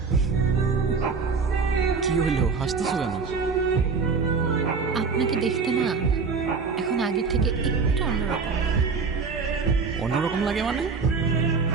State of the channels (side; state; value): left; quieter; 5.0 dB